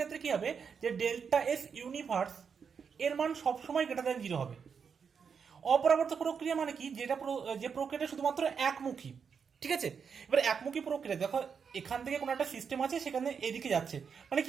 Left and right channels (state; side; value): quieter; left; 6.4 dB